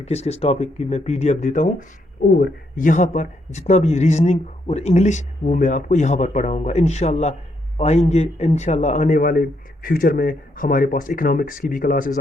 किस किस टॉपिक की मैं पीडीएफ देता हूँ। और यहाँ पर जितना भी रीजनिंग और इंग्लिश वो मैं आपको यहाँ पर पढ़ाऊँगा इंशाल्लाह। आएंगे इंशाल्लाह आने वाले फ्यूचर में हमारे पास इकोनॉमिक्स की भी क्लासेस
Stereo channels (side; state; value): both; normal; correlation 0.76